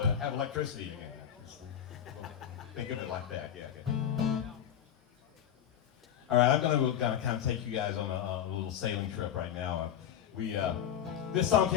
to have electricity again. Think of it like that, yeah. Okay. All right, I'm going to kind of take you guys on a little sailing trip right now. This song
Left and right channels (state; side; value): quieter; right; 9.7 dB